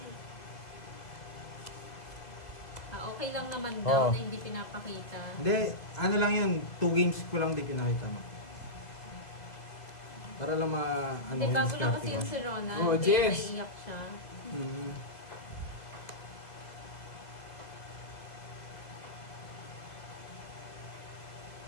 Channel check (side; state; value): right; late; 2.0 ms